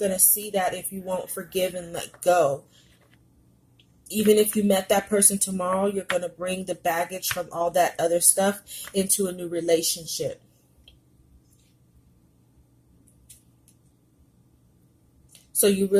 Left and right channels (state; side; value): identical; both; correlation 1.00